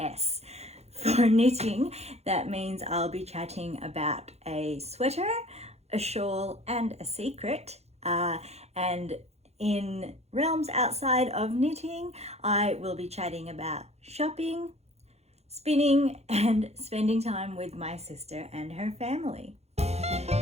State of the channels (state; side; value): late; left; 0.31 ms